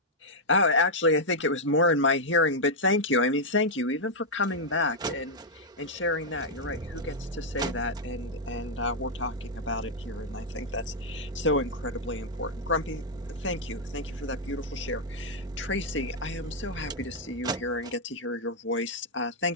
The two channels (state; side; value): normal; both; correlation -0.04